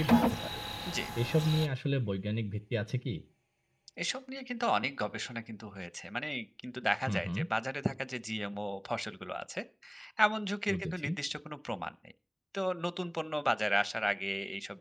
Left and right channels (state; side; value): identical; both; correlation 1.00